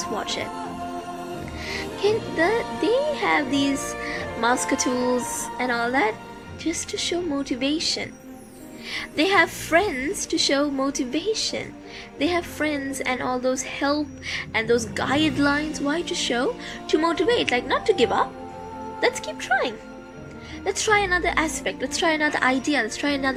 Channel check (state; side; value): identical; both; correlation 1.00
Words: watch it. They have these muscatools and all that just to show motivation. They have friends to show motivation. They have friends and all those help and those guidelines. Why to show? To motivate, like not to give up. Let's keep trying. Let's try another aspect. Let's try another idea. Let's try